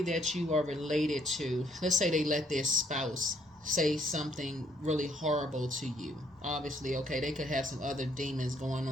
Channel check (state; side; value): normal; both; correlation 0.67